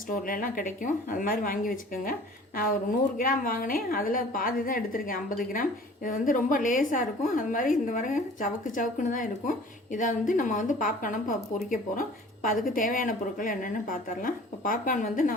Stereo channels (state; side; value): normal; both; correlation 0.47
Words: ஸ்டோர்லலாம் கிடைக்கும். அது மாதிரி வாங்கி வச்சுக்கோங்க. நான் ஒரு 100 கிராம் வாங்கினேன், அதில் பாதி தான் எடுத்திருக்கேன், 50 கிராம். இது வந்து ரொம்ப லேஸாக இருக்கும். அது மாதிரி இந்த வர சவுக்குன்னு தான் இருக்கும். இதை வந்து நம்ம வந்து பாப்கார்னை பொரிக்க போகிறோம். இப்போ அதுக்கு தேவையான பொருட்கள் என்னென்னு பார்த்துடலாம். இப்போ பாப்கார்ன் வந்து